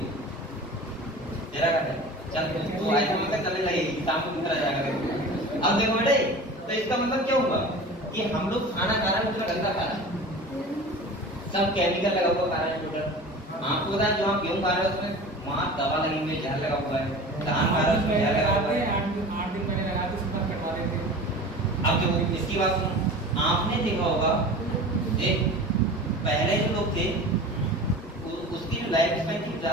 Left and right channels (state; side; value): normal; both; correlation 0.37